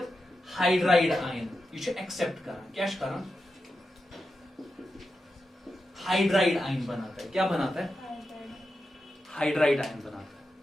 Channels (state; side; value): normal; both; correlation 0.89